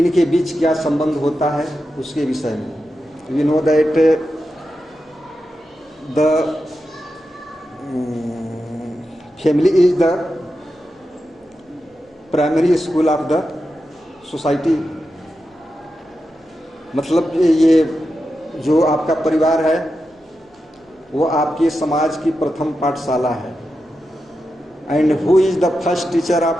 बीच क्या संबंध होता है उसके विषय में। We know that the family is the primary school of the society. मतलब ये जो आपका परिवार है वो आपके समाज की प्रथम पाठशाला है। And who is the first teacher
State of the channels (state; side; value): normal; both; correlation 0.89